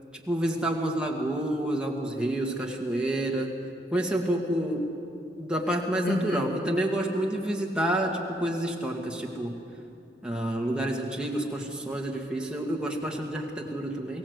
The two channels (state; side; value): normal; both; correlation 0.73